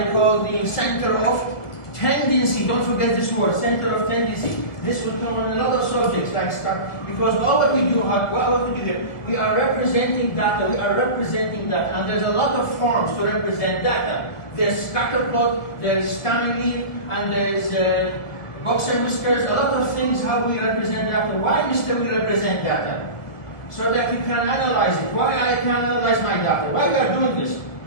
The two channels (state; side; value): late; right; 1.5 ms